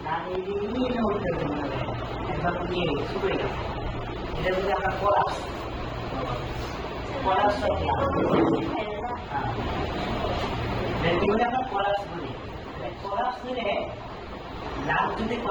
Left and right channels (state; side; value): identical; both; correlation 1.00